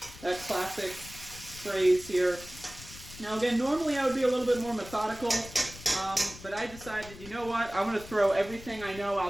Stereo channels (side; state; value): left; noise; rumble, 16 dB below the sound